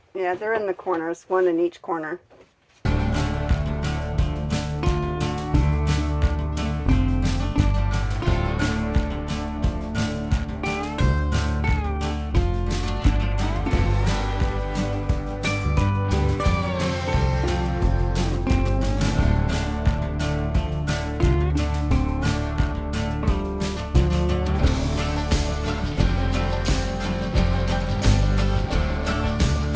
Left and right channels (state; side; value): identical; both; correlation 1.00